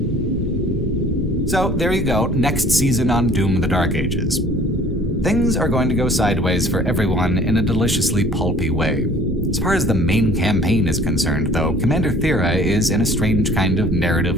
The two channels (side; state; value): both; normal; correlation 0.51